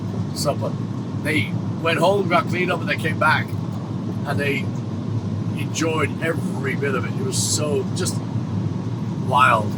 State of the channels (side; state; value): both; identical; correlation 1.00